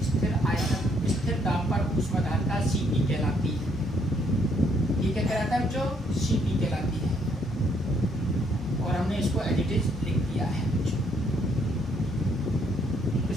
स्थिर आयतन स्थिर दाब पर ऊष्माधारता Cp कहलाती है। ये क्या कहलाता है बच्चों? Cp कहलाती है। और हमने इसको एडिटिव लिख दिया है।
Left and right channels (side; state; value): both; normal; correlation 0.69